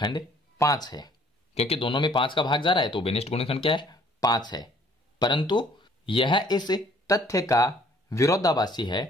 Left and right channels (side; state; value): both; normal; correlation 0.59